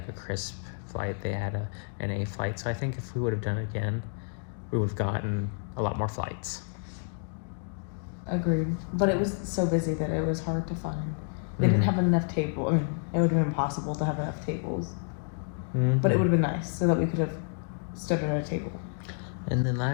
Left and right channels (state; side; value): silent; right; 58 dB below the other